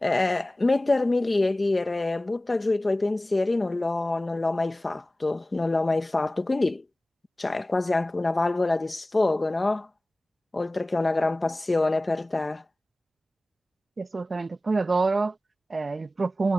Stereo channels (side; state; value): both; normal; correlation 0.97